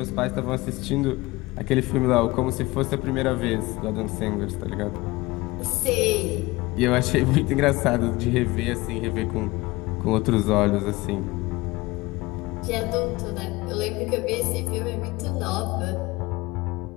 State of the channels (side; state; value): right; quieter; 21.4 dB